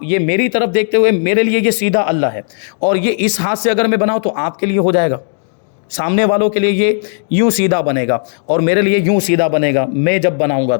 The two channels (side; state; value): right; silent; digital silence